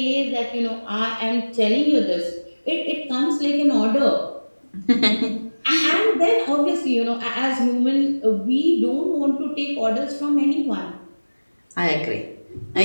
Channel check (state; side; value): inverted; both; correlation -1.00